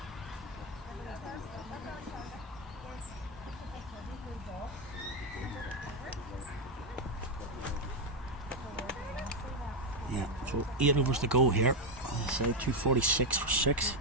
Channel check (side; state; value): both; normal; correlation 0.05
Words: Yeah, so 8 overs to go here. I say 246 for 6.